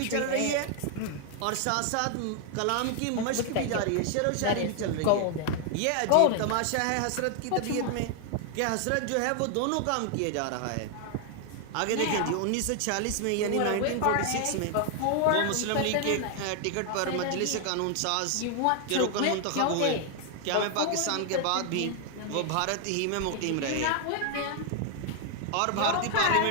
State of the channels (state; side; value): different; both; correlation 0.00